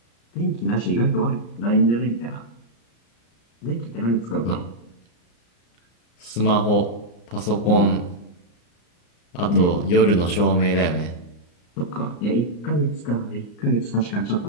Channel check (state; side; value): late; right; 34 ms